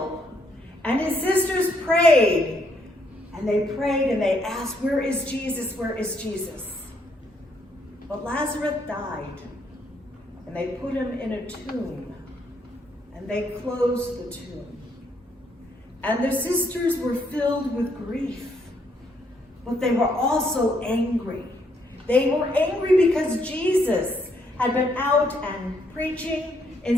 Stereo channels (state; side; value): normal; both; correlation 0.72